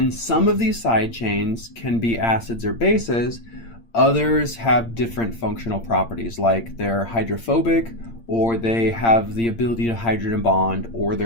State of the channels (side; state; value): right; late; 8.7 ms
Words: some of these side chains can be acids or bases. Others have different functional properties, like they're hydrophobic, or they have the ability to hydrogen bond, or